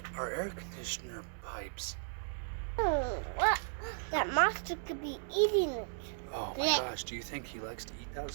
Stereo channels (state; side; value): silent; left; digital silence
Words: our air conditioner pipes. What? That monster could be eating it. Oh my gosh, do you think he likes to eat that